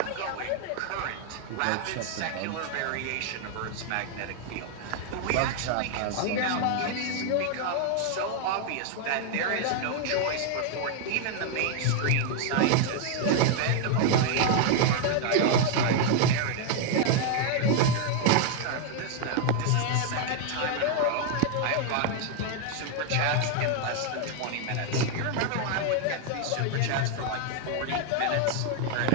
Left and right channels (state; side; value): different; both; correlation 0.00